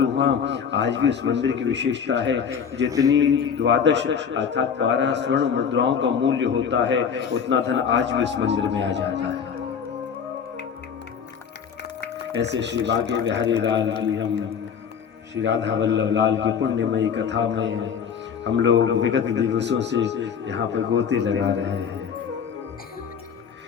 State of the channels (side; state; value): right; quieter; 7.1 dB